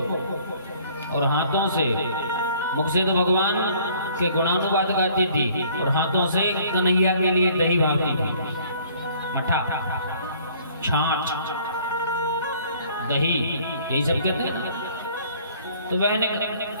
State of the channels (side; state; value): both; inverted; correlation -0.56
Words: और हाथों से, मुख से तो भगवान के गुणानुवाद गाती थी और हाथों से कन्हैया के लिए दही भावती थी, मठा, छाछ, दही, यही सब कहते हैं। तो वह